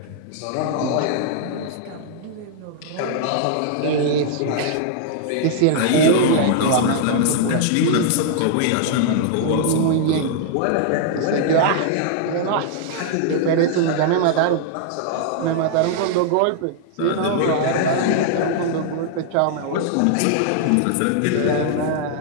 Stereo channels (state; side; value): different; both; correlation -0.01